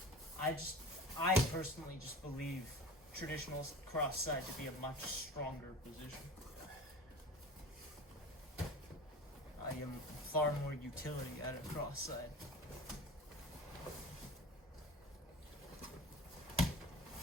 I personally just believe traditional cross side to be a much stronger position. I am far more utility at a cross side. There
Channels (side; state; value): both; normal; correlation 0.36